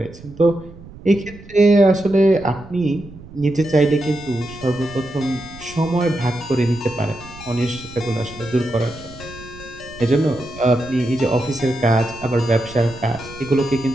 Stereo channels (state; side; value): noise; right; rumble, 18 dB below the sound